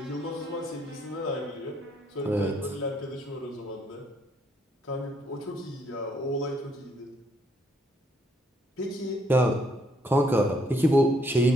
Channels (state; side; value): normal; both; correlation 0.70